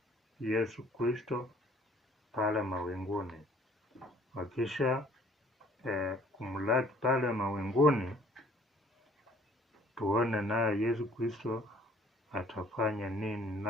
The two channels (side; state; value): both; normal; correlation 0.57